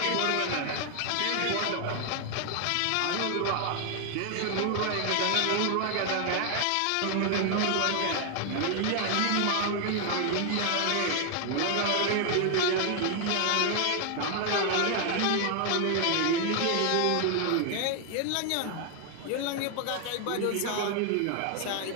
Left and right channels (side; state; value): both; different; correlation 0.00